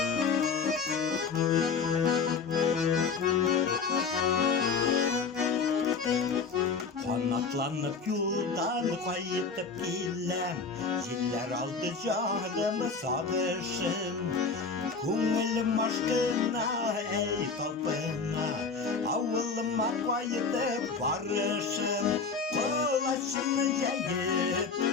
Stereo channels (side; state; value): right; quieter; 4.9 dB